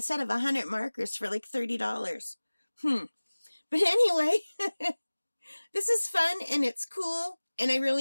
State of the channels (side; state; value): both; inverted; correlation -1.00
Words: set of 100 markers for like $30. But anyway, this is fun and it's cool and I